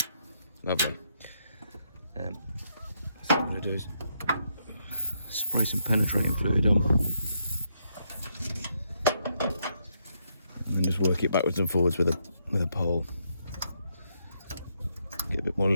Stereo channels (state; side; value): inverted; both; correlation -0.77